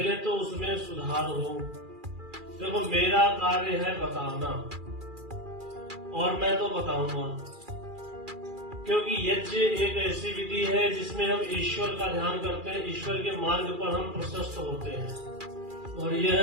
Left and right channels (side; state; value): left; late; 2.4 ms